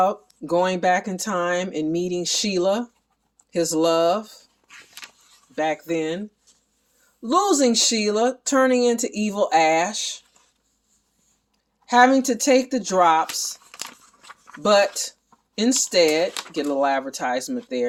going back in time and meeting Sheila, his love, back then. Losing Sheila, turning into evil Ash. Having to take the drops, but instead, get a little advertisement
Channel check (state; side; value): identical; both; correlation 1.00